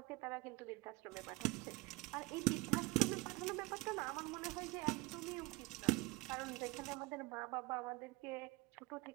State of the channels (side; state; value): left; quieter; 22.4 dB